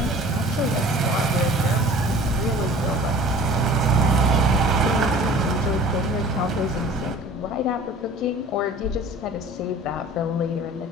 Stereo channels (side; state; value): both; normal; correlation 0.45